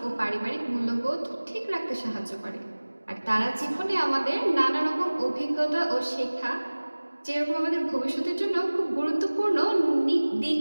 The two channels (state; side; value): inverted; both; correlation -1.00